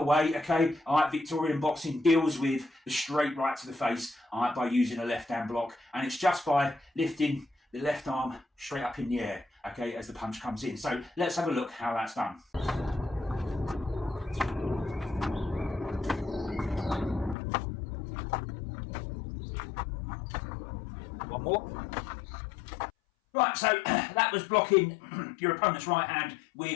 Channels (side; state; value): right; drops out; at 17.4 s